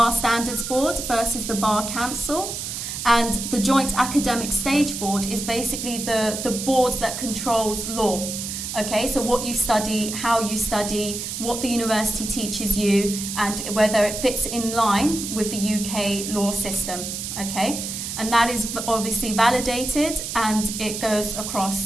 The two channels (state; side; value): noise; right; hiss, 6 dB below the sound